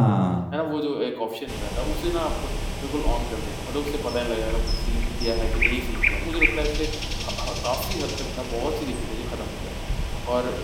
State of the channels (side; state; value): both; identical; correlation 1.00